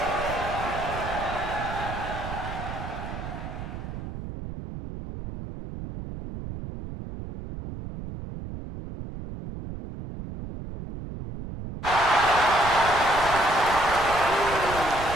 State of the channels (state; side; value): noise; right; rumble, 9 dB below the sound